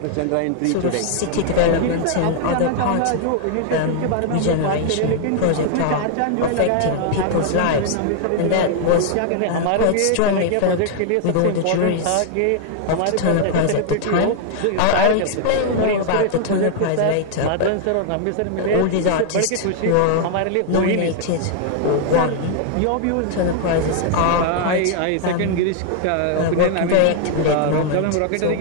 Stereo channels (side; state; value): both; different; correlation 0.00